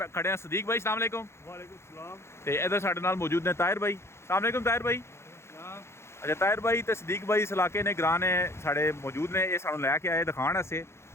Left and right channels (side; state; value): right; late; 0.13 ms